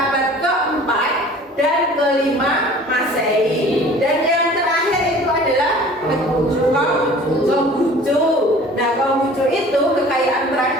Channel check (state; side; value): normal; both; correlation 0.47